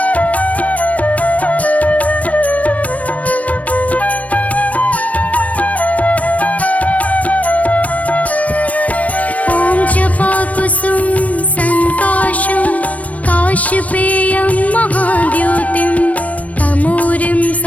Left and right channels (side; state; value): right; late; 0.068 ms